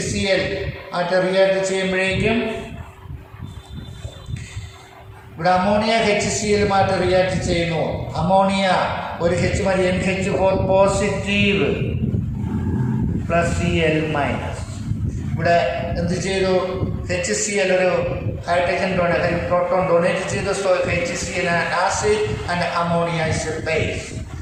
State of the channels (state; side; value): identical; both; correlation 1.00